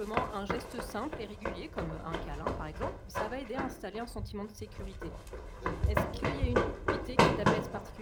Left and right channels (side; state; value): both; identical; correlation 1.00